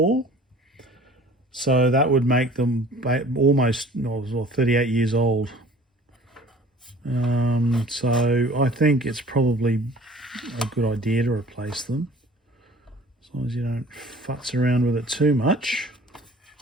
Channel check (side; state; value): both; normal; correlation 0.48